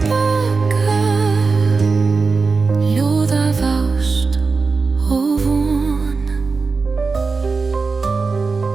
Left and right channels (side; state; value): left; quieter; 4.4 dB